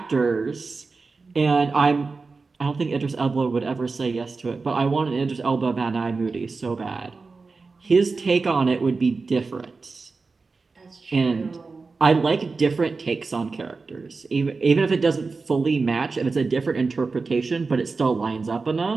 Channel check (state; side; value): quieter; left; 4.2 dB